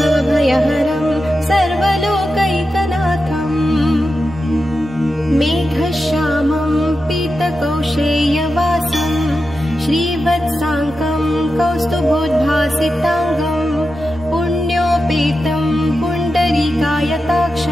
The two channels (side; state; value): both; normal; correlation 0.90